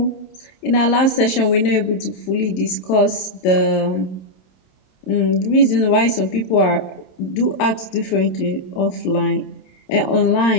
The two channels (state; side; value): late; right; 27 ms